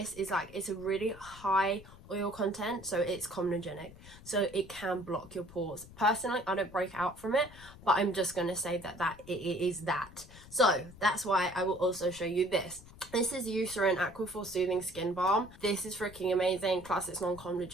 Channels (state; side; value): noise; left; rumble, 19 dB below the sound